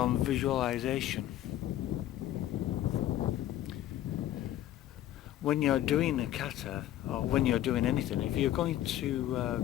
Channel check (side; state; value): right; quieter; 12.9 dB